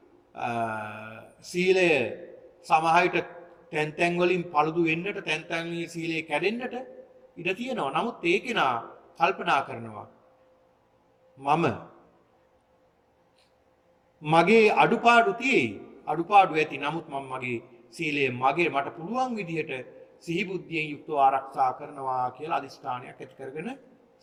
සීලය සමහරවිට තැන් තැන් වලින් පළුදු වෙන්නට, තැන් තැන් වලින් සීලය කැඩෙන්නට ඉඩ තියෙනවා. නමුත් ඒ කෙනා කල්පනා කරනවා මම මගේ අඩුපාඩු තියෙයි. අඩුපාඩු ඇති. නමුත් මම මගේ සීලය මට පුළුවන් විදිහට සිහි බුද්ධියෙන් යුක්තව ආරක්ෂා කරනවා කියලා අදිස්ථානයක් ඇති කරගෙන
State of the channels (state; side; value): identical; both; correlation 1.00